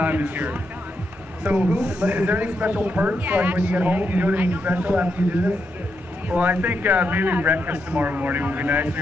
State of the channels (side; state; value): both; normal; correlation 0.82